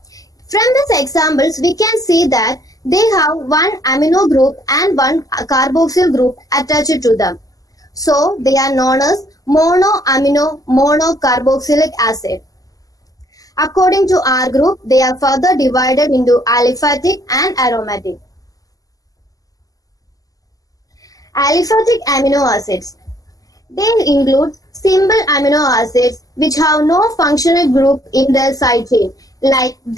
From these examples, we can see that they have one amino group and one carboxyl group attached to them. So, they are known as monoamino monocarboxylic acid. According to R group, they are further divided into aliphatic and aromatic. Aliphatic amino acids. They include simple amino acids which have no functional group in their side chain like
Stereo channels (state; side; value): late; right; 0.17 ms